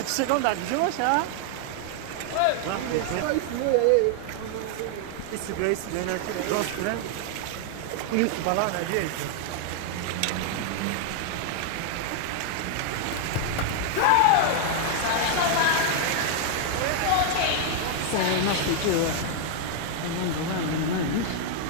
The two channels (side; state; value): both; different; correlation 0.00